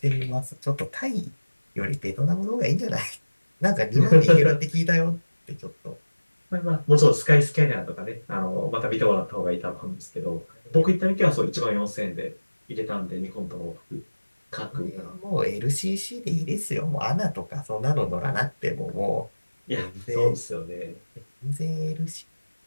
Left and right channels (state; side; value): inverted; both; correlation -1.00